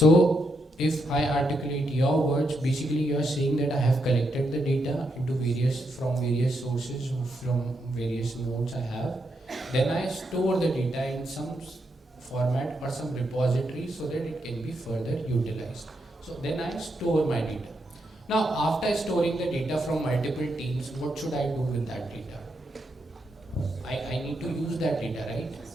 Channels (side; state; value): both; normal; correlation 0.81